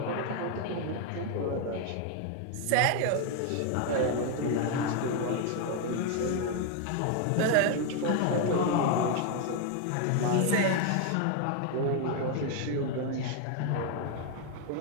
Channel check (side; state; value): both; different; correlation 0.01